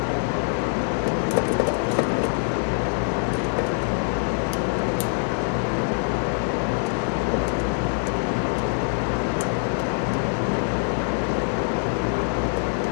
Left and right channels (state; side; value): silent; right; 56 dB below the other